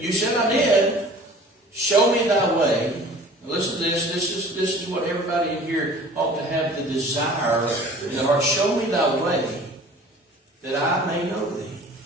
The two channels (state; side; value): normal; both; correlation 0.46